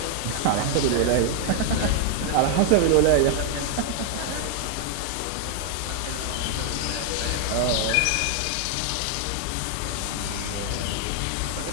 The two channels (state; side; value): different; both; correlation 0.00